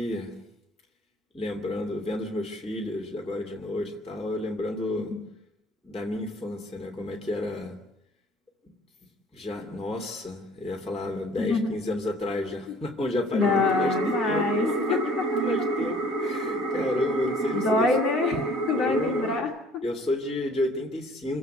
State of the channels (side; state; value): both; normal; correlation 0.54